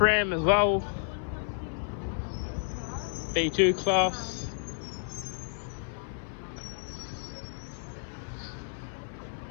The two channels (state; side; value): silent; right; 57 dB below the other